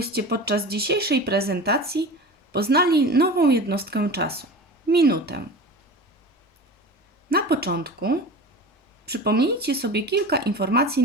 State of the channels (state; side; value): normal; both; correlation 0.33